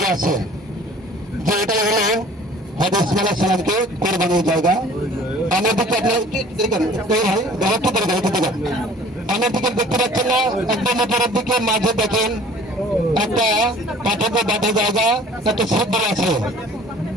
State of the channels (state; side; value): normal; both; correlation 0.49